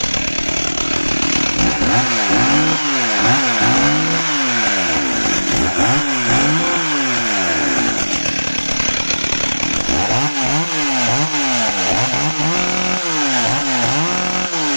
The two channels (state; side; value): inverted; both; correlation -1.00